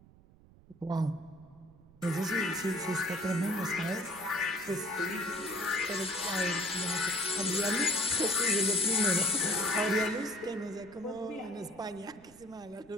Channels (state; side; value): noise; right; rumble, 25 dB below the sound